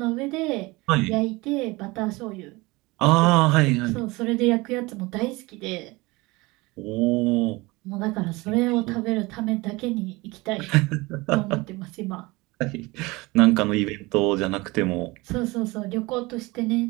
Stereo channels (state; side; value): quieter; left; 22.9 dB